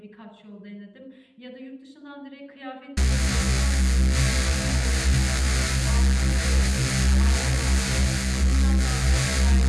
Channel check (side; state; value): both; identical; correlation 1.00